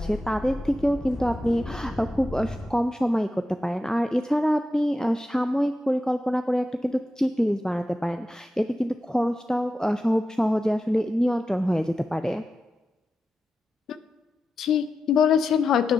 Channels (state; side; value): normal; both; correlation 0.90